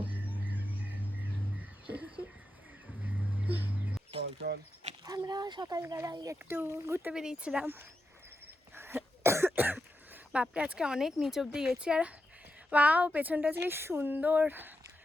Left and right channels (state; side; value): normal; both; correlation 0.87